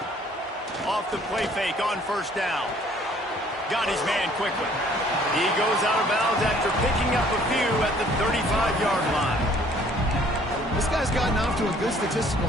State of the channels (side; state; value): both; normal; correlation 0.58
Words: Off the play fake on first down. Got his man quickly. He goes out of bounds after picking up a few at the 35-yard line. This guy's gotten off to a good statistical